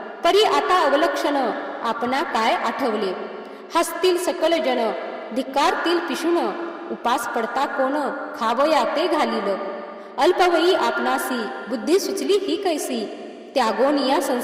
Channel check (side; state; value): both; identical; correlation 1.00